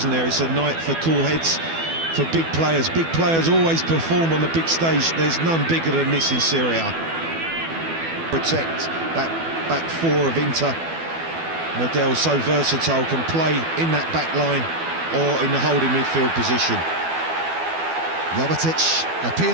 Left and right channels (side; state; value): left; late; 12 ms